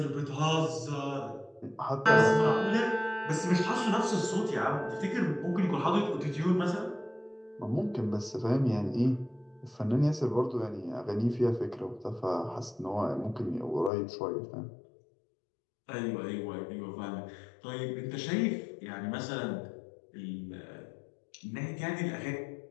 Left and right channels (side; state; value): right; drops out; at 13.9 s